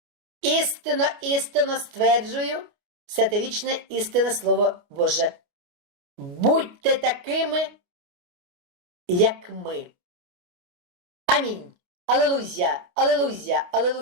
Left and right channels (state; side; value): late; left; 29 ms